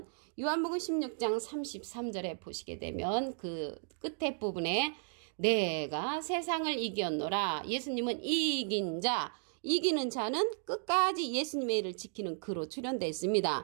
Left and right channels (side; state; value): left; silent; 55 dB below the other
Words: 요한복음 16장 33절에 보시게 되면 그 끝에 부분에 내가 세상을 이겼노라. 예수님은 이긴 자. 이기는 자는 끝까지 예수님의 일을 지키는 그로 출현되어